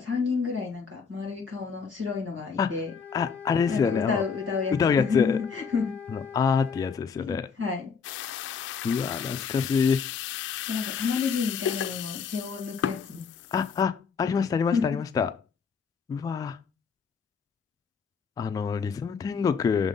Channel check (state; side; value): quieter; right; 5.9 dB